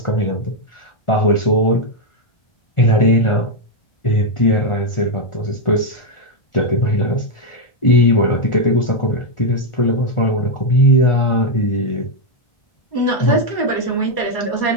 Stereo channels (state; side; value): late; right; 1.4 ms